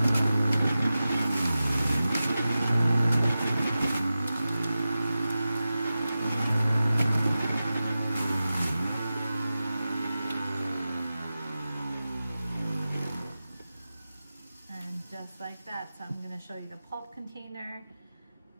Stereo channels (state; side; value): inverted; both; correlation -0.94